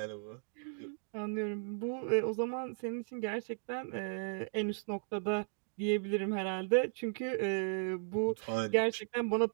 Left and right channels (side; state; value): left; silent; digital silence